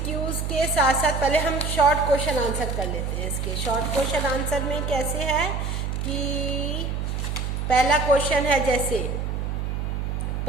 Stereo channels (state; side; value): noise; right; hum, 2 dB below the sound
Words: के साथ साथ पहले हम शॉर्ट क्वेश्चन आंसर कर लेते हैं। इसके शॉर्ट क्वेश्चन आंसर में कैसे है कि पहला क्वेश्चन है, जैसे